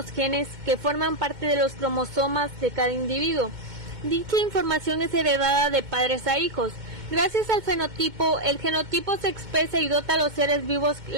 genes que forman parte de los cromosomas de cada individuo. Dicha información es heredada de padres a hijos. Gracias al fenotipo, el genotipo se expresa y dota a los seres vivos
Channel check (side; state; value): left; late; 2.2 ms